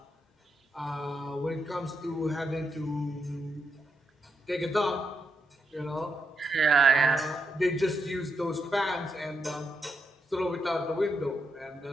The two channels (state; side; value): normal; both; correlation 0.83